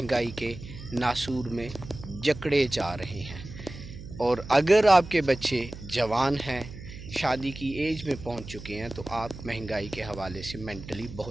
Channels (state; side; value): noise; right; hum, 13 dB below the sound